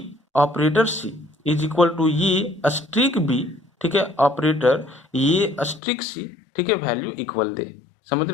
operator C is equal to ये स्ट्रिक बी, ठीक है, ऑपरेटर ये स्ट्रिक सी, ठीक है, वैल्यू इक्वल दे। समझ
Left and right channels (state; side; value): drops out; right; at 5.8 s